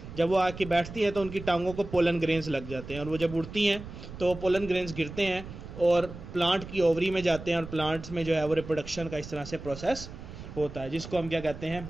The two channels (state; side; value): noise; right; rumble, 12 dB below the sound